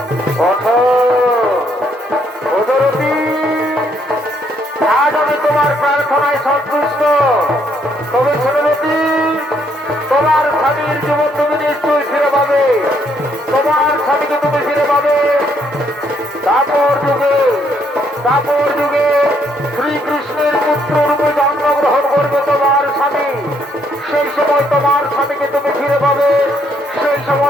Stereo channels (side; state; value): both; normal; correlation 0.71